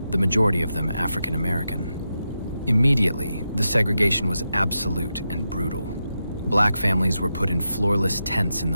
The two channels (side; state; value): both; inverted; correlation -0.88